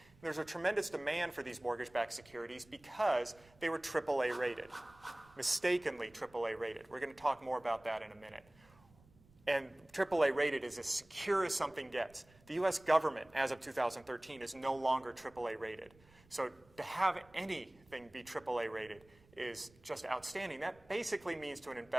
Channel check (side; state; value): right; noise; rumble, 28 dB below the sound